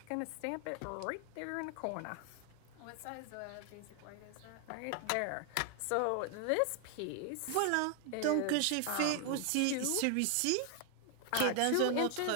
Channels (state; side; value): different; both; correlation 0.00